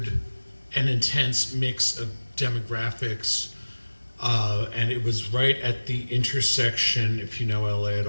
an intense mix of demographics. And it was right at the intersection, if you know LA at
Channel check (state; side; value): inverted; both; correlation -1.00